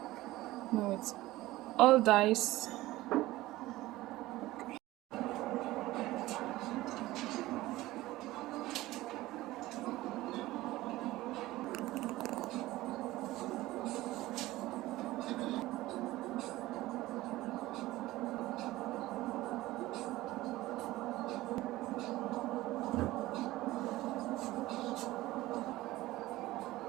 Now it's all diced.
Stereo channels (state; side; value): quieter; left; 17.6 dB